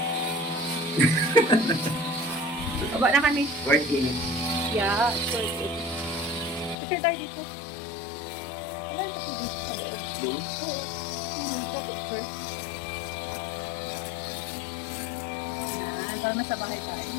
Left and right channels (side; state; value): right; drops out; at 6.8 s